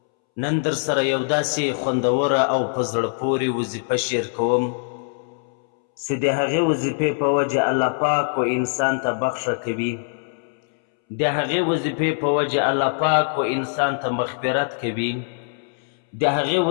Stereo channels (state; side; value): silent; right; 64 dB below the other